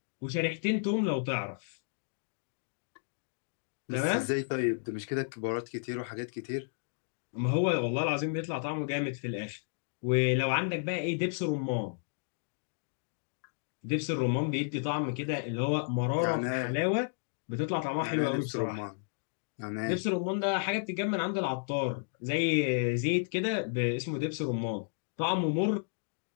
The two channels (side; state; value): right; silent; digital silence